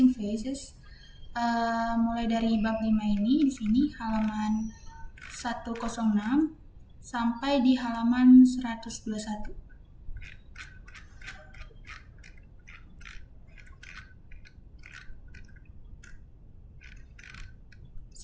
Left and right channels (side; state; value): both; identical; correlation 1.00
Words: faces. Mulai dari bab 5 ini di sini halaman 106 sampai di halaman 121.